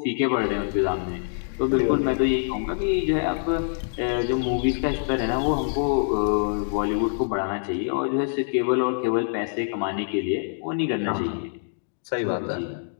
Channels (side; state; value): right; silent; digital silence